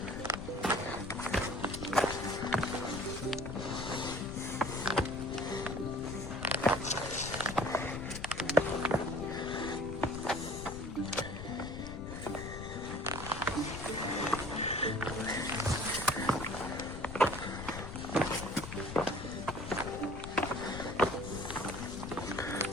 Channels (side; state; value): left; noise; rumble, 9 dB below the sound